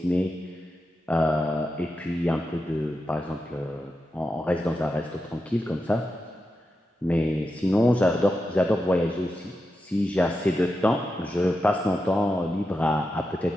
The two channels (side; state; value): both; normal; correlation 0.89